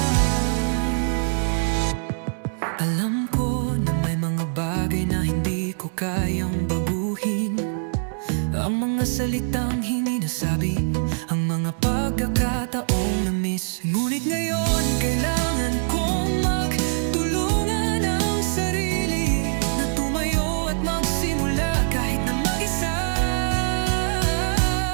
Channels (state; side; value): silent; left; 59 dB below the other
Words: Alam ko na may mga bagay na hindi ko kayang baguhin, ang mga salitang hindi nasabi, ang mga pagkakataong na-miss. Ngunit ngayon kailangan kong magtulungan ang sarili na tumayo at magsimula kahit na mag-isa.